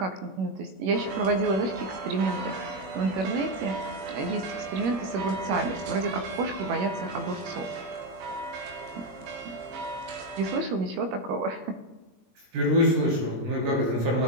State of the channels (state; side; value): late; left; 21 ms